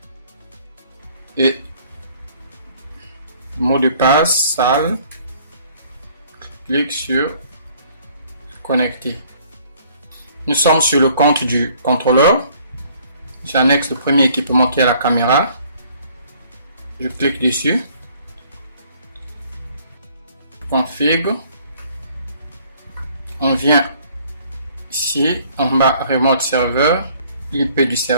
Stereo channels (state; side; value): inverted; both; correlation -0.59